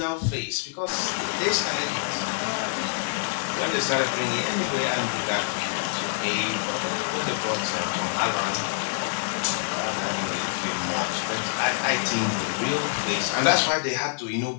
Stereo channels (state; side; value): silent; right; 61 dB below the other